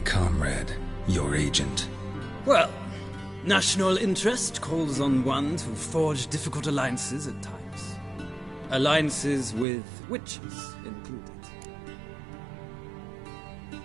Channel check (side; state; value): left; drops out; at 9.7 s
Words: comrade, your agent. Well, national interest calls on one to forge difficult alliances at times. Alliances with witches included.